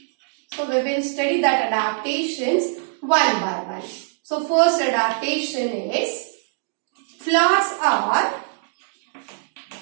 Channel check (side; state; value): left; silent; digital silence